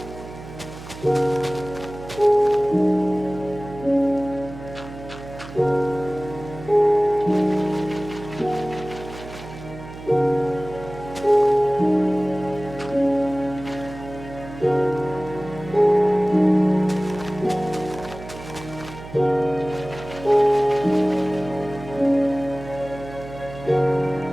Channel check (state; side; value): noise; right; hum, 14 dB below the sound